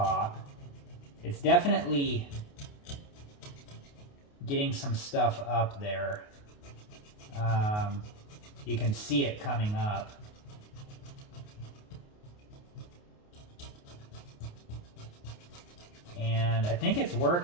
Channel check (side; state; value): right; late; 28 ms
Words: It's definitely getting some stuff up there. You can see it coming up. And I think it's